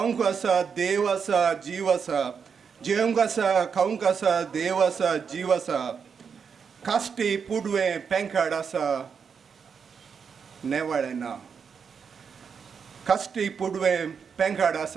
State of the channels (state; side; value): quieter; left; 6.4 dB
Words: आसा देव आसा जीव आसा. जेवंक आसा खावंक आसा देव आसा जीव आसा. कास्टी पुडवें पेंकाड आसा नेवाळें ना. कास्टी पुडवें पेंकाड